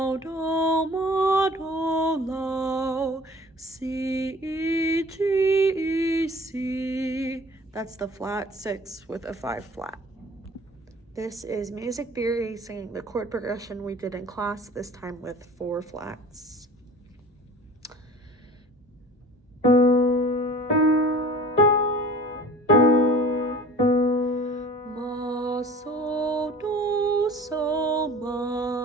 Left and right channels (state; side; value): normal; both; correlation 0.44